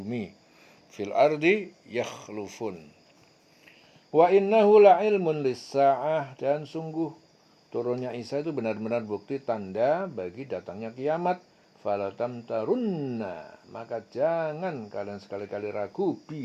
Fil ardi yakhlufun. Wa innahu la'ilmun lis-sa'ah, dan sungguh turunnya Isa itu benar-benar bukti tanda bagi datangnya kiamat. Falatam tarunna, maka jangan kalian sekali-kali ragu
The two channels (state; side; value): identical; both; correlation 1.00